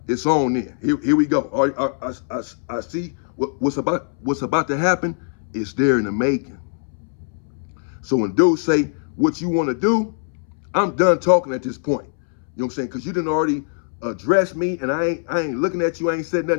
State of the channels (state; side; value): silent; right; 64 dB below the other